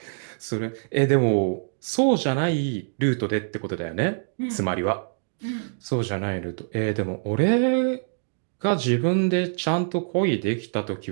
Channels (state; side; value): silent; left; digital silence